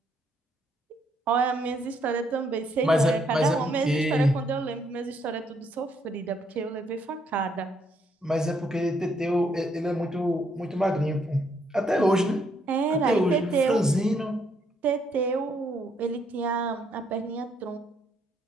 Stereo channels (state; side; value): normal; both; correlation 0.72